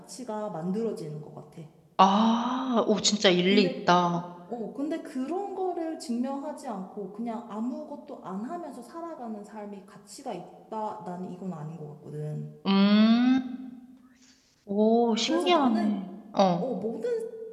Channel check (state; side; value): identical; both; correlation 1.00